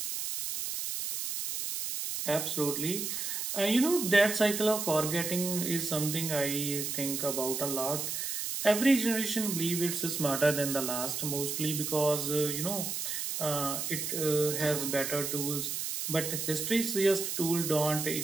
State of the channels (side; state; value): right; noise; hiss, 3 dB below the sound